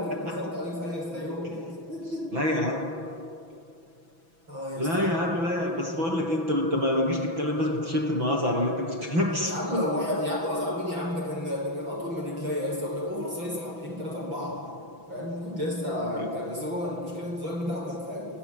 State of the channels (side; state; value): left; late; 6.0 ms